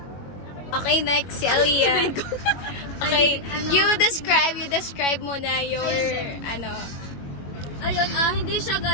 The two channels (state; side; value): late; right; 21 ms